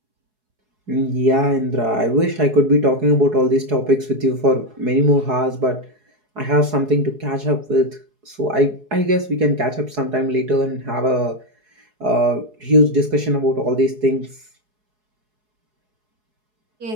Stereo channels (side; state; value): left; late; 4.7 ms